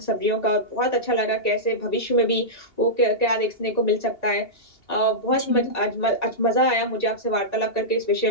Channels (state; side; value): late; right; 2.8 ms